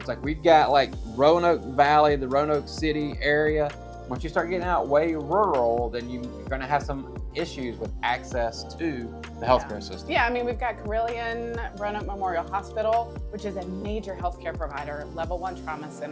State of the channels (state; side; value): identical; both; correlation 1.00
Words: we've got Roanoke Valley, the Roanoke City area. Once you start getting out way rural, then you're going to have some issues with access to the healthcare system. Yeah, I mean, we've got Carilion Roanoke Memorial Hospital, which is a major healthcare provider, level 1 trauma